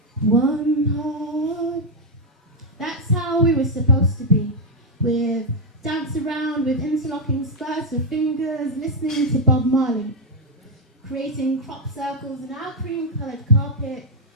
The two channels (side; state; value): both; normal; correlation 0.00